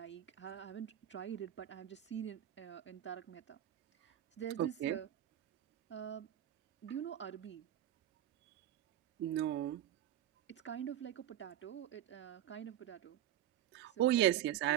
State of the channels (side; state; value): left; quieter; 12.0 dB